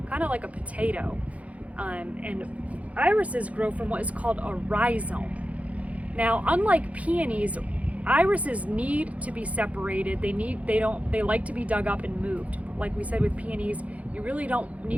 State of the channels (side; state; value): left; late; 0.067 ms